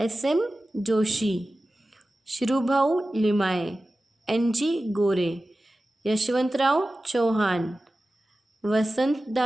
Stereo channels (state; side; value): normal; both; correlation 0.95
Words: Joshi, Shrubhau Limaye, N.G. Gore, Yashwantrao Chauhan, Vasant